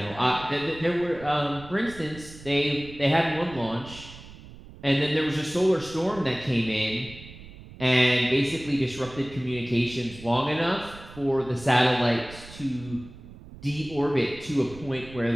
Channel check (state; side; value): noise; right; rumble, 17 dB below the sound